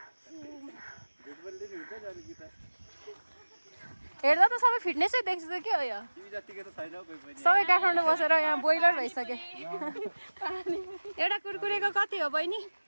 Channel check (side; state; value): both; inverted; correlation -1.00